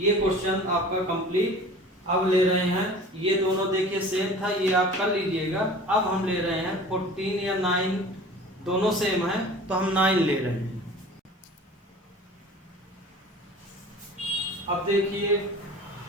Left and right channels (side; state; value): both; normal; correlation 0.42